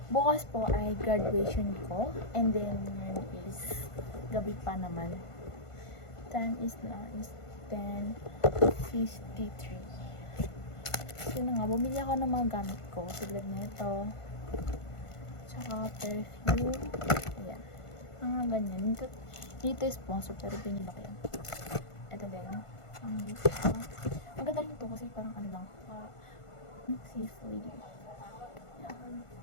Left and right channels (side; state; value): right; late; 1.5 ms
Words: Bukas po ay graduation ko. And then, yun is gabi pa naman. Time is now is 10:53. So na nga, bumili ako ng mga gamit ko. Tulad nito. Tsaka perfume. Ayan. Mga ganyan. Dito is sponsor pero pinili ko yan. Ito din. Maganda rin ito kasi parang ano lang. Safe lady. Yan.